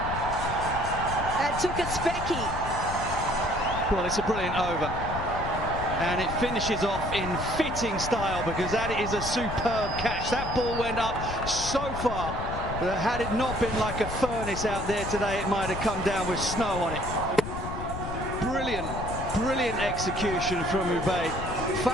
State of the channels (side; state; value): left; noise; rumble, 7 dB below the sound